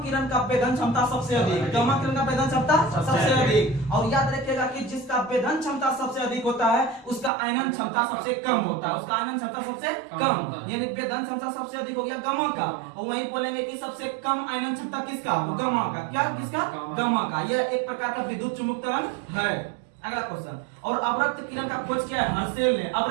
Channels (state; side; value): drops out; left; at 7.3 s